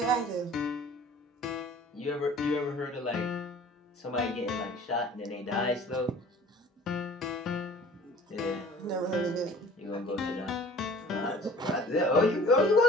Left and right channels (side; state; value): both; normal; correlation 0.47